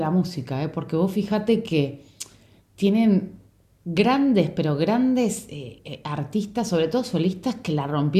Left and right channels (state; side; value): identical; both; correlation 1.00